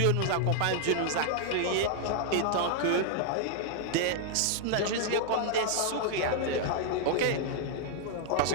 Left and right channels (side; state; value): both; different; correlation -0.01